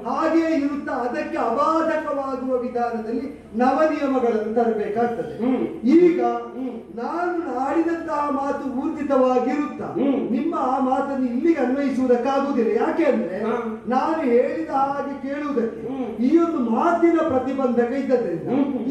ಹಾಗೆಯೇ ಇರುತ್ತಾ ಅದಕ್ಕೆ ಅಬಾಧಕವಾಗುವ ವಿಧಾನದಲ್ಲಿ ನವ ನಿಯಮಗಳನ್ನು ತರಬೇಕಾಗ್ತದೆ. ಈಗ ನಾನು ಆಡಿದಂತಹ ಮಾತು ಊರ್ಜಿತವಾಗಿರುತ್ತಾ ನಿಮ್ಮ ಆ ಮಾತನ್ನು ಇಲ್ಲಿಗೆ ಅನ್ವಯಿಸುವುದಕ್ಕಾಗುವುದಿಲ್ಲ. ಯಾಕೆ ಅಂದ್ರೆ ನಾನು ಹೇಳಿದ ಹಾಗೆ ಕೇಳುವುದಕ್ಕೆ ಈ ಒಂದು ಮಾತಿನ ಪ್ರತಿಬಂಧಕ ಇದ್ದದ್ರಿಂದ,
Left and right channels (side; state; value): both; identical; correlation 1.00